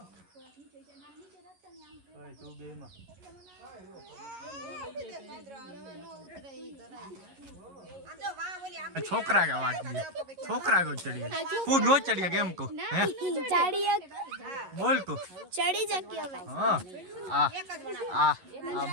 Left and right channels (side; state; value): left; late; 11 ms